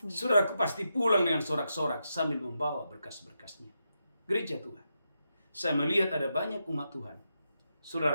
saudaraku pasti pulang dengan sorak-sorak sambil membawa berkas-berkasnya. Gereja Tuhan, saya melihat ada banyak umat Tuhan,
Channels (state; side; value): inverted; both; correlation -0.85